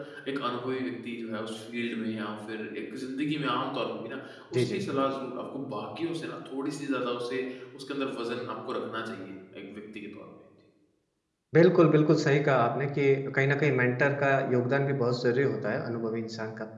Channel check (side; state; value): both; identical; correlation 1.00